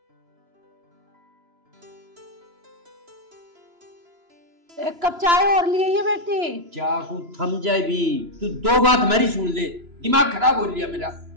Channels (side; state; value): left; late; 3.0 ms